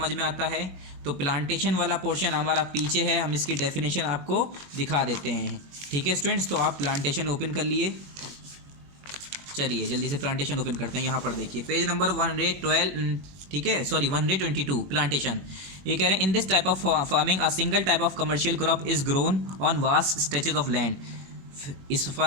में आता है? तो प्लांटेशन वाला पोर्शन हमारा पीछे है, हम इसकी डेफिनेशन आपको दिखा देते हैं। ठीक है स्टूडेंट्स, तो आप प्लांटेशन ओपन कर लिए। चलिए जल्दी से प्लांटेशन ओपन करते हैं। यहाँ पर देखिए पेज नंबर 112, ठीक है, सॉरी 122, प्लांटेशन। ये कह रहे हैं, इन this type of farming a single type of commercial crop is grown on vast stretches of land. इस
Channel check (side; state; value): left; late; 21 ms